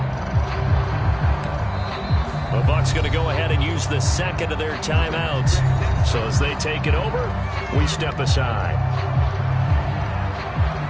The Bucs going to go ahead and use the second of their timeouts. So as they take it over, we step aside.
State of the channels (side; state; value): both; identical; correlation 1.00